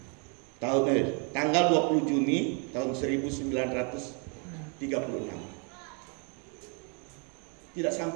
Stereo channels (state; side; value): quieter; left; 36.3 dB